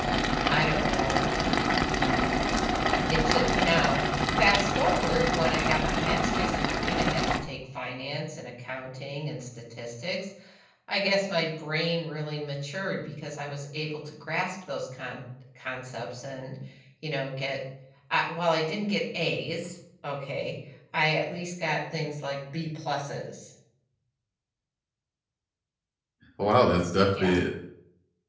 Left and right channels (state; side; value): identical; both; correlation 1.00